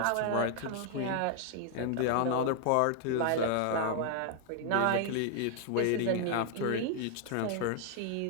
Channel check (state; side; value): different; both; correlation 0.00